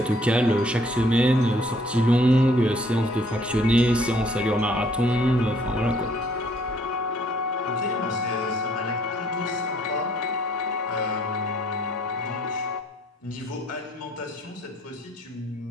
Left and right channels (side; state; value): both; normal; correlation 0.63